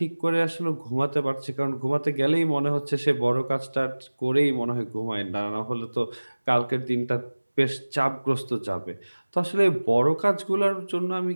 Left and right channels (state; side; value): inverted; both; correlation -1.00